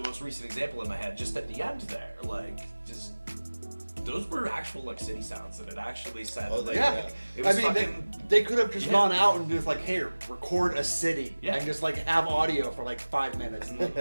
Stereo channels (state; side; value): inverted; both; correlation -1.00